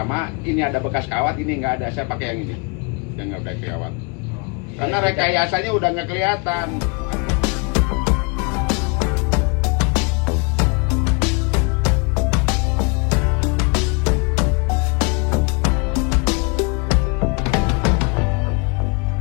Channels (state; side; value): quieter; right; 31.7 dB